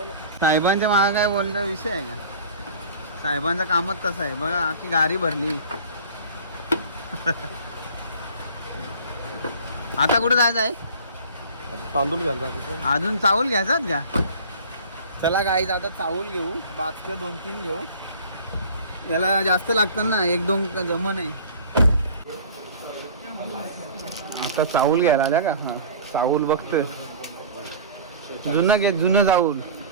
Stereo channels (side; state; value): both; inverted; correlation -0.42